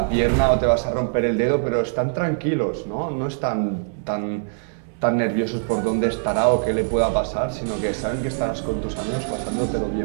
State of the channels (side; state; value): left; silent; 64 dB below the other